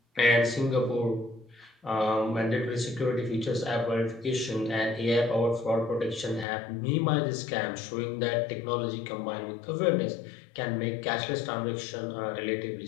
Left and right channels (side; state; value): right; drops out; at 6.5 s